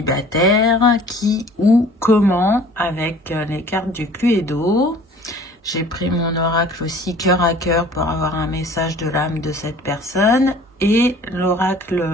qui, où, comment, avec les cartes du Cluedo. J'ai pris mon oracle aussi cœur à cœur pour avoir un message de l'âme de cette personne et l'oracle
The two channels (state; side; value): normal; both; correlation 0.49